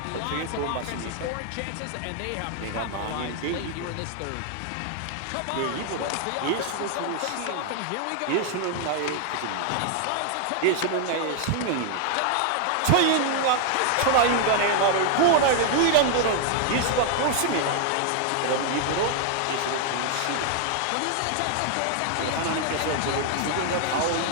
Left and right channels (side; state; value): both; different; correlation 0.00